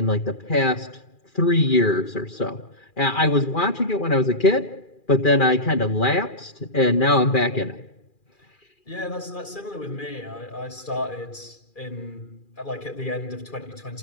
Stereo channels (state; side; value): late; right; 2.4 ms